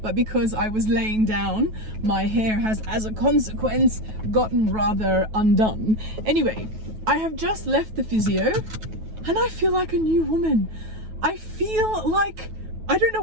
but because I was laying down, my hair has, as a consequence, gotten rather undone. Anyway, I have just left the physio and I feel like a new woman. I feel like, I don't know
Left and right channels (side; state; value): left; late; 9.3 ms